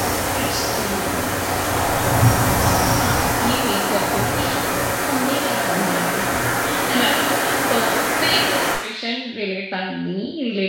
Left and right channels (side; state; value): both; identical; correlation 1.00